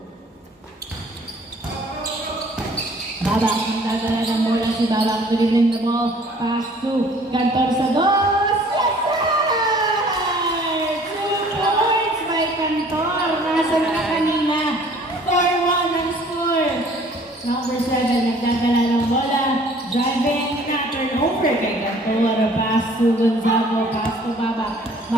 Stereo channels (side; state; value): both; normal; correlation 0.54